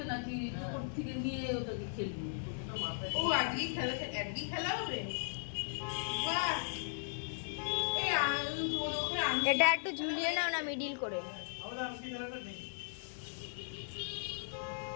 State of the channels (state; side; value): silent; right; digital silence